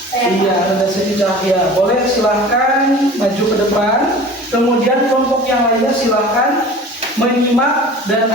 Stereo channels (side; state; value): both; normal; correlation 0.41